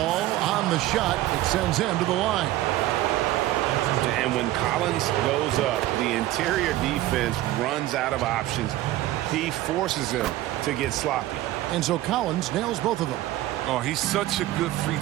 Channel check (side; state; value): left; quieter; 15.4 dB